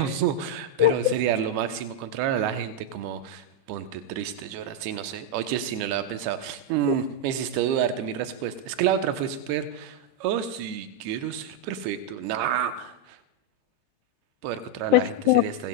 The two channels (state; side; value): late; left; 11 ms